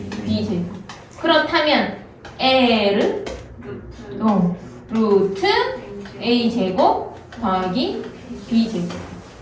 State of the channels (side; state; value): both; identical; correlation 1.00